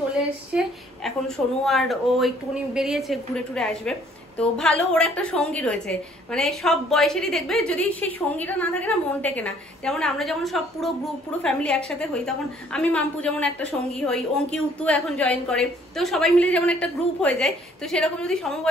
এসছে, এখন সোনু আর ও একটুখানি বেরিয়েছে, ঘুরে টুরে আসবে। তো ভালো, ওর একটা সঙ্গী রয়েছে, মানে সব বয়সেরই দেখবে যদি সেই সঙ্গীটা না থাকে না মন টেকে না। যেমন আমরা যখন সব পুরো গ্রুপ, পুরো ফ্যামিলি একসাথে হই, তখন আমি মাম্পু যেমন একটা সঙ্গী হই, অঙ্কি উত্তু এখন জয়েন করে, তো সবাই মিলে যেমন একটা গ্রুপ হয়ে যায়। তো সেরকম যদি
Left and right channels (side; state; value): both; normal; correlation 0.60